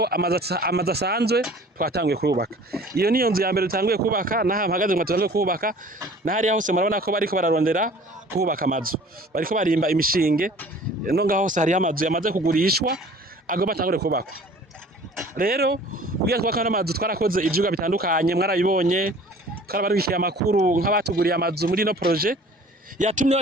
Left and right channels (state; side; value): normal; both; correlation 0.48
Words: amazu asanzwe twatanguye kubaka. Iyo niyo nzu ya mbere tutanguye kubaka naha mpagaze ngo tutanguye kubaka nahari hose murabona ko bariko bararondera kubaka amazu. Bariko barimba imishinge no ngaho hose hari amazu yamaze kugurishwa agomba atangure kubakwa. Rero kugira twaka n'amazu twarakoze ivyuga bitandukanye mwarabibonye twarabarukiye amakuru nk'abatuguriye amazu muri no projet yatumye